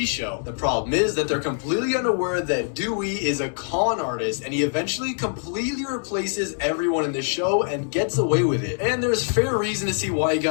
show. The problem is that they're completely unaware that Dewey is a con artist, and he eventually completely replaces everyone in the show and gets away with it. And there's fair reason to see why he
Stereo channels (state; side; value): silent; right; 63 dB below the other